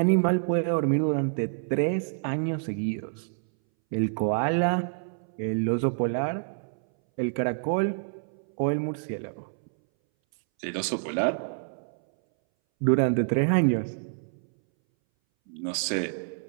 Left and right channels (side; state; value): left; silent; 60 dB below the other